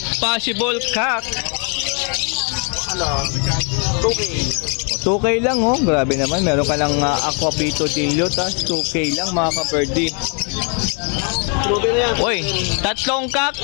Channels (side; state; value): right; quieter; 39.1 dB